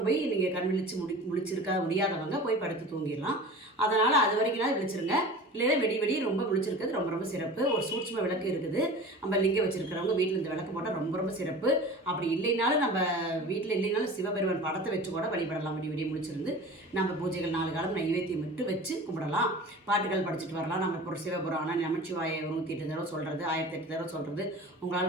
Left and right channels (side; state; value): both; normal; correlation 0.37